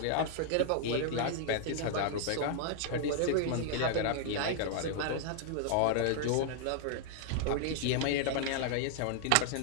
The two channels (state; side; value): different; both; correlation -0.01